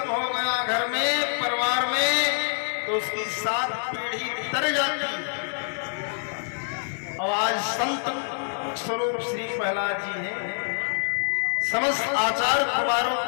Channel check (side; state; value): right; silent; digital silence